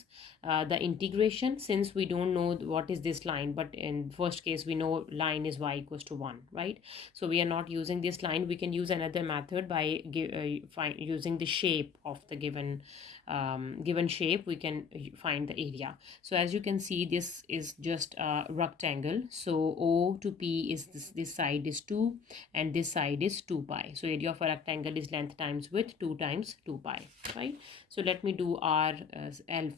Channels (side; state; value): right; quieter; 6.4 dB